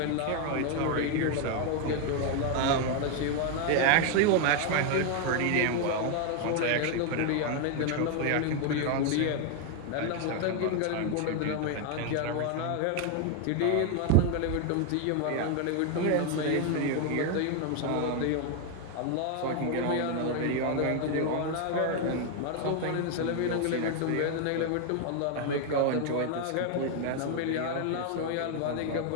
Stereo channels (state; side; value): different; both; correlation 0.01